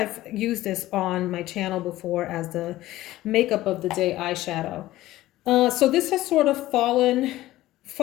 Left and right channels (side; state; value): right; quieter; 15.9 dB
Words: used this on my channel before as the makeup of the day eyeshadow. So this has sort of fallen